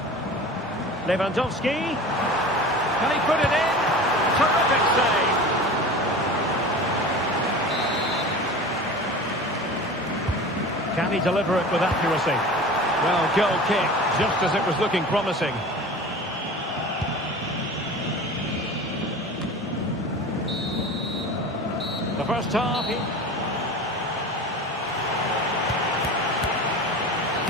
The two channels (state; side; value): normal; both; correlation 0.35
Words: Lewandowski. Can he put it in? Terrific save. Can he deliver it with accuracy? Well, goal kick, just as it was looking promising. The first half.